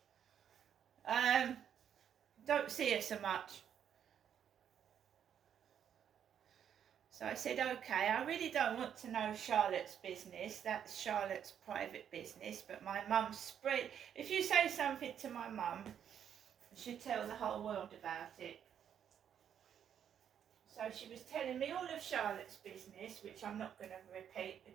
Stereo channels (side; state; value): left; quieter; 8.9 dB